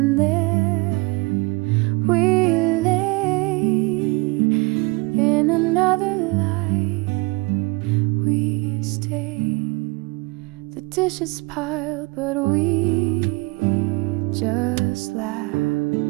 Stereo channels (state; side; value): quieter; left; 25.5 dB